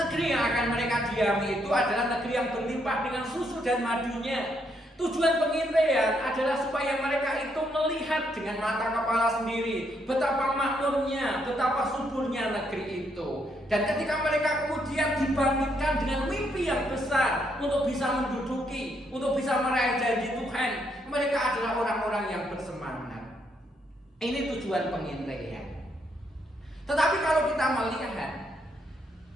yang akan mereka diami itu adalah negeri yang berlimpah dengan susu dan madunya? Tujuan pengintaian adalah supaya mereka itu melihat dengan mata kepala sendiri betapa makmurnya, betapa suburnya negeri itu. Dan ketika mereka kemudian dibangkitkan dengan mimpi yang besar untuk bisa menduduki, untuk bisa meraih janji Tuhan, mereka adalah orang-orang yang bersemangat. Ini tujuan pengintaian. Tetapi kalau kita melihat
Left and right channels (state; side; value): normal; both; correlation 0.75